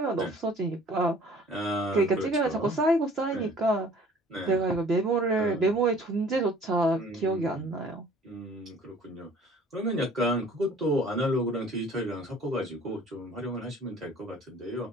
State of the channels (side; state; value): both; normal; correlation 0.52